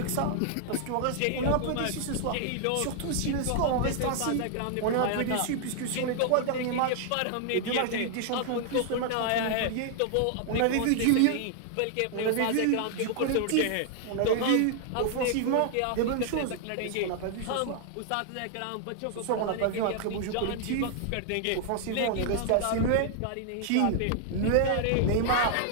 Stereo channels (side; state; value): both; different; correlation 0.00